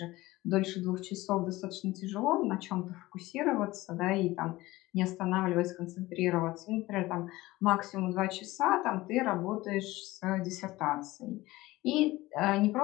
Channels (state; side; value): quieter; right; 18.7 dB